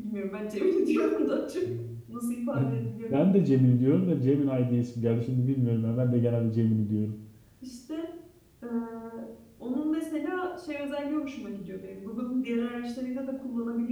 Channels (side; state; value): both; identical; correlation 1.00